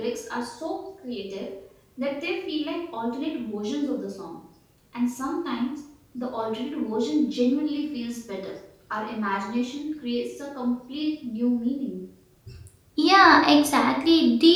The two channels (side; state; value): both; identical; correlation 1.00